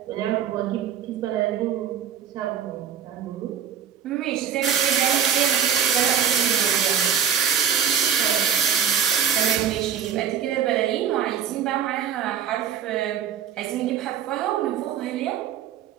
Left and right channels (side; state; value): left; quieter; 8.3 dB